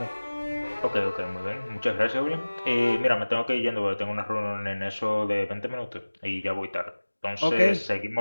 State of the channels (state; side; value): inverted; both; correlation -1.00